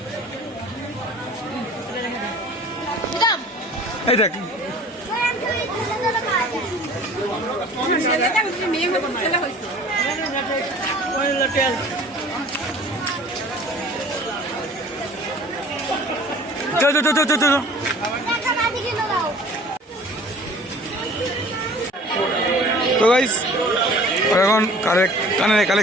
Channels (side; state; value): both; normal; correlation 0.47